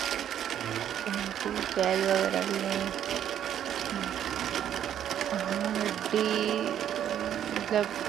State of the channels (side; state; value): left; quieter; 10.1 dB